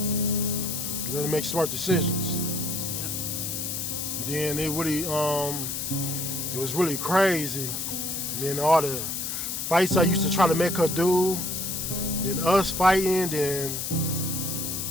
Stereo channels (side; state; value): left; noise; hiss, 3 dB below the sound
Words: You gotta make smart decisions. Yep. Then it was really crazy. Then all the fights I used to try to make her do, then us fighting, then